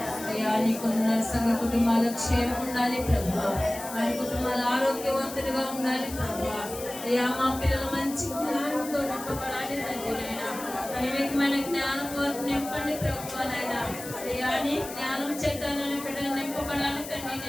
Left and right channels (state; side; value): noise; left; hiss, 11 dB below the sound